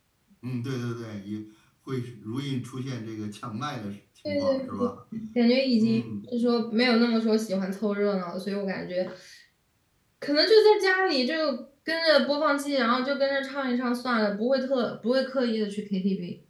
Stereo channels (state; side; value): identical; both; correlation 1.00